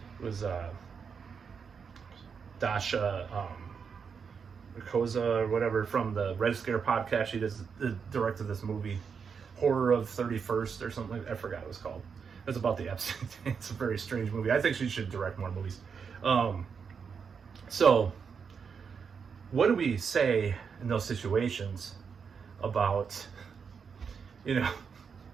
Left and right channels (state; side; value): quieter; left; 6.2 dB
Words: was Dasha Koza or whatever from the Red Scare podcast. She directed this movie, Horror of 31st or something like that. I forgot what it was called. It's about the Epstein thing. It's a very strange movie. I think she should direct more movies. So what do we say in those situations about, you know,